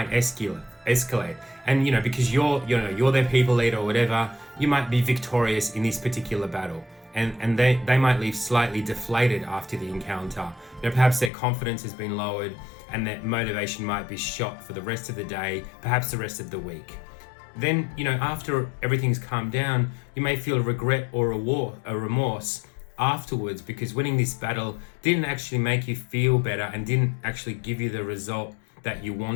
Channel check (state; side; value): drops out; right; at 11.3 s